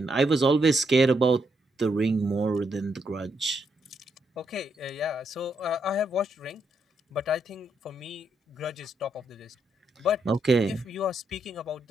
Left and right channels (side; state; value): both; normal; correlation 0.78